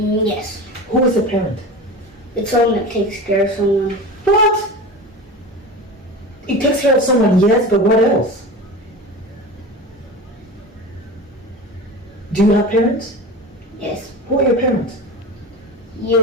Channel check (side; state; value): both; normal; correlation 0.31